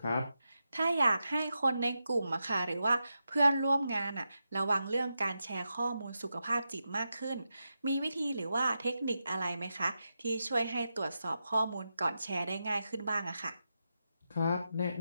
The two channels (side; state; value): both; inverted; correlation -0.88